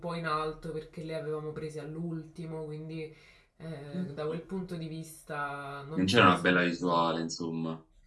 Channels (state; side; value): identical; both; correlation 1.00